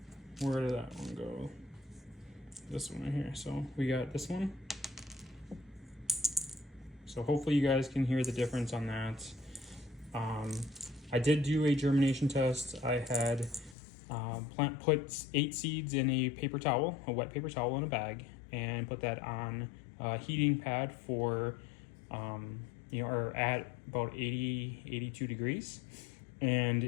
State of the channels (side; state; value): right; drops out; at 13.8 s